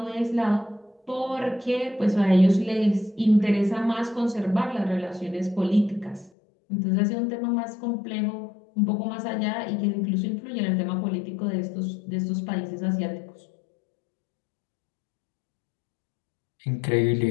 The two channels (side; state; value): right; drops out; at 6.3 s